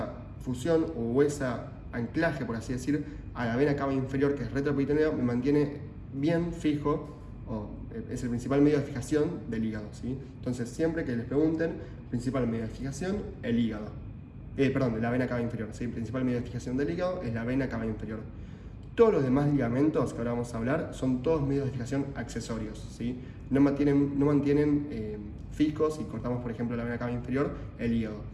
fusión o ese anclaje, por así decir, a la vena cava inferior, que es retroperitoneo, me mantiene bien fijo, o es el principal medio de fijación del hígado, ¿sí? Entonces, siempre que les pregunten, principal medio de fijación, el hígado. La vena cava inferior, ¿sí? Principal medio de fijación del hígado es la vena cava inferior. Todos los demás ligamentos que ahora vamos a hablar son todos medios de fijación accesorios, ¿sí? No mantienen fijos. Si cortamos, por ejemplo, la vena cava inferior, el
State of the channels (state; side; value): identical; both; correlation 1.00